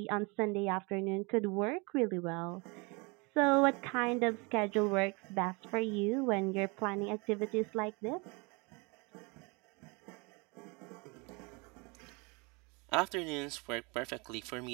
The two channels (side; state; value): left; quieter; 29.2 dB